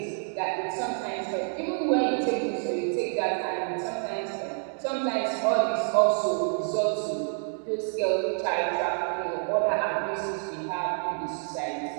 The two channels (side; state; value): left; silent; 57 dB below the other